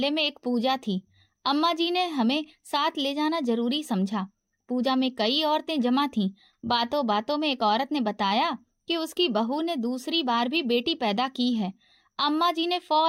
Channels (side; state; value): both; identical; correlation 1.00